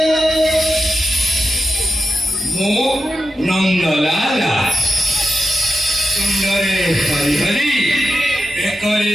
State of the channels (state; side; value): normal; both; correlation 0.89